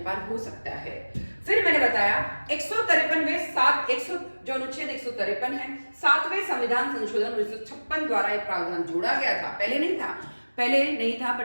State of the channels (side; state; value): both; inverted; correlation -1.00